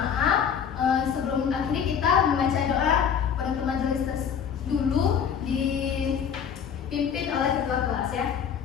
Sebelum akhiri kita membaca doa penutup majelis dulu dipimpin oleh ketua kelas ya.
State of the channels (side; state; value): right; quieter; 7.7 dB